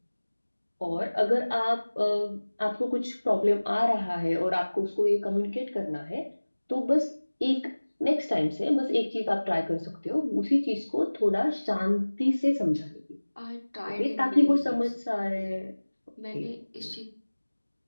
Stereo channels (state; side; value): inverted; both; correlation -1.00